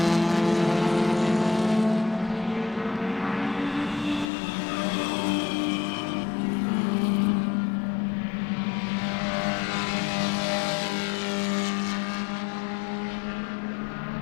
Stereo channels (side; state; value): right; drops out; at 4.2 s